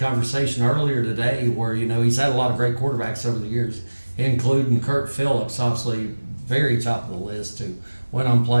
earlier today where, he's had a lot of great quarterbacks over the years, including Kurt Phillips, obviously very top of the list, who went on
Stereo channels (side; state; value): both; inverted; correlation -1.00